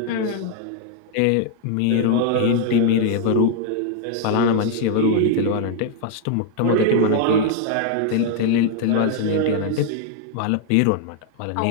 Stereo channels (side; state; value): both; different; correlation 0.00